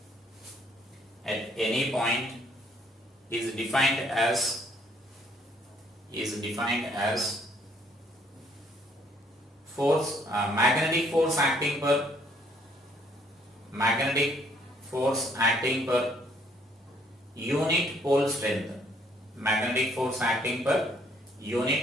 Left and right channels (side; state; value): both; normal; correlation 0.65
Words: is defined as force, magnetic force acting per unit pole strength, magnetic force acting per